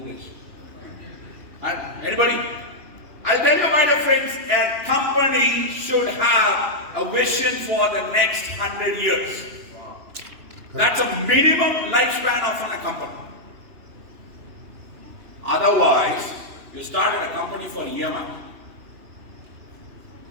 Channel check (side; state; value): left; late; 2.9 ms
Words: And anybody? I'll tell you, my dear friends, a company should have a vision for the next 100 years. Wow. That's a minimum lifespan of a company. Otherwise, you started a company for EMI.